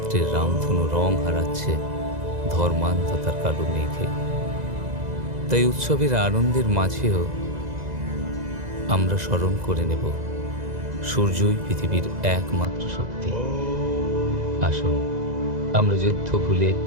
রামধনু রং হারাচ্ছে ধর্মান্ধতার কালো মেঘে। তাই উৎসবের আনন্দের মাঝেও আমরা স্মরণ করে নেব সূর্যই পৃথিবীর একমাত্র শক্তি। আসুন আমরা যুদ্ধ ভুলে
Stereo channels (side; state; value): left; late; 2.0 ms